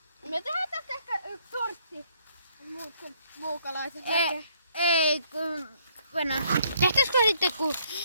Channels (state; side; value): inverted; both; correlation -0.67